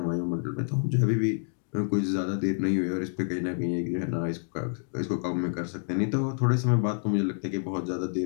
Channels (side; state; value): right; silent; digital silence